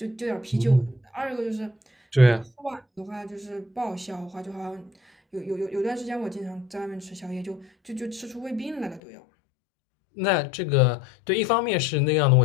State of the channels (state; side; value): drops out; right; at 9.0 s